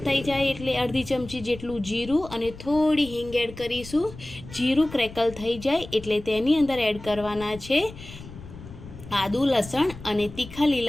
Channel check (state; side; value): noise; left; rumble, 15 dB below the sound